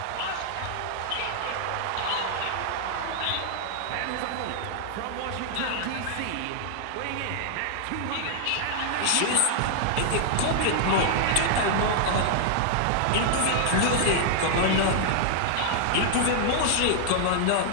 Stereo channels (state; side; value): different; both; correlation 0.00